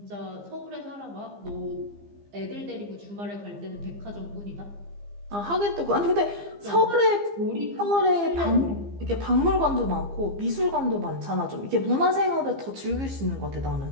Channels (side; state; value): left; late; 15 ms